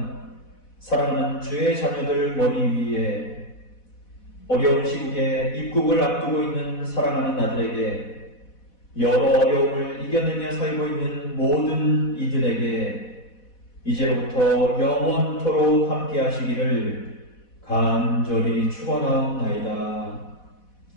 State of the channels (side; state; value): right; late; 4.1 ms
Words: 사랑하는 주의 자녀들 머리 위에 어려운 시국에 입국을 앞두고 있는 사랑하는 아들에게 여러 어려움을 이겨내며 살고 있는 모든 이들에게 이제로부터 영원토록 함께 하시기를 간절히 축원하옵나이다.